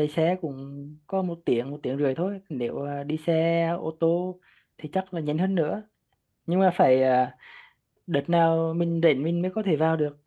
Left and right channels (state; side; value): identical; both; correlation 1.00